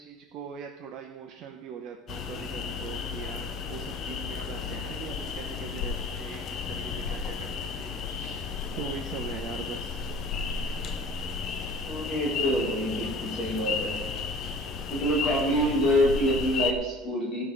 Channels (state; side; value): normal; both; correlation 0.46